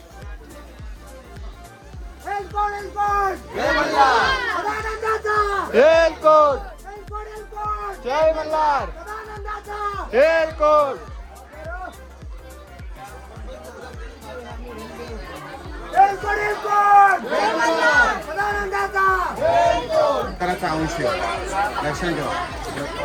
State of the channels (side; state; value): both; identical; correlation 1.00